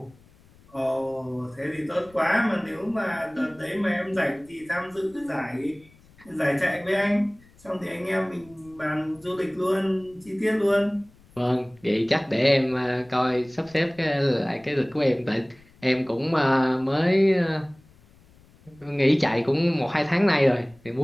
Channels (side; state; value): left; noise; rumble, 27 dB below the sound